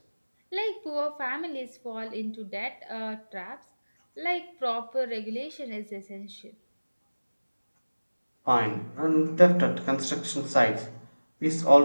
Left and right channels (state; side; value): inverted; both; correlation -1.00